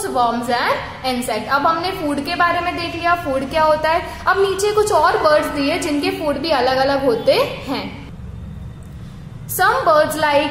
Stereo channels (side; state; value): both; identical; correlation 1.00